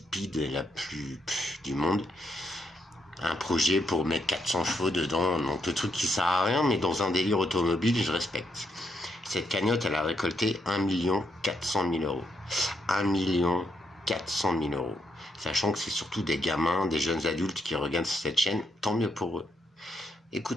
et la plus du monde. Un projet pour mettre 400 chevaux dedans, donc le truc qui sert à rien, mais dans un délire automobile, je respecte. Cette cagnotte, elle a récolté 1 400 000 €. 1 400 000 €. Sachant que c'est surtout des gamins, des jeunes adultes qui regardent cette chaîne, tant mieux pour eux.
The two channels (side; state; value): both; normal; correlation 0.78